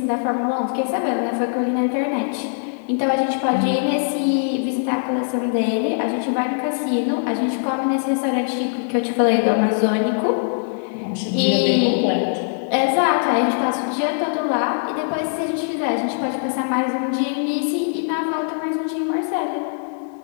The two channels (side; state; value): right; silent; digital silence